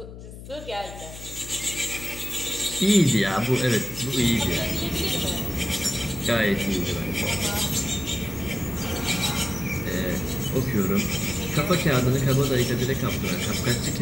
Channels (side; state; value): left; noise; hum, 14 dB below the sound